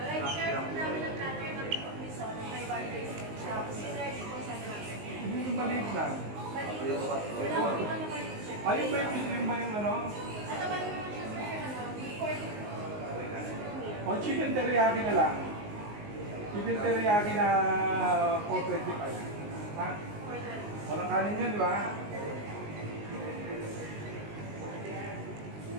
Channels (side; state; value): left; late; 19 ms